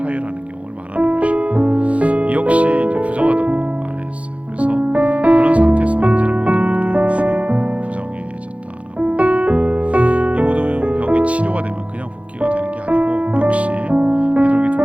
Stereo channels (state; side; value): late; left; 0.063 ms